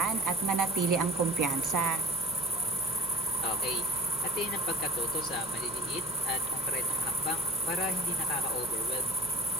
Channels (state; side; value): noise; right; hum, 18 dB below the sound